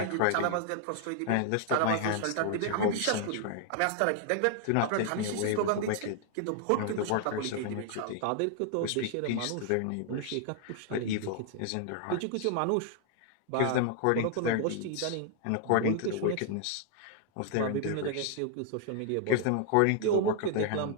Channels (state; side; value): different; both; correlation 0.00